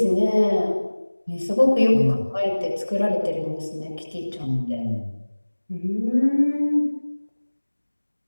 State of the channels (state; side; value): inverted; both; correlation -1.00